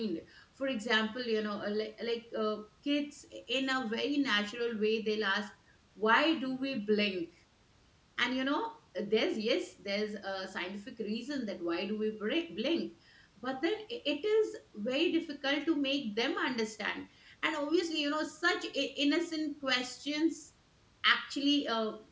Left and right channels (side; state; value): both; identical; correlation 1.00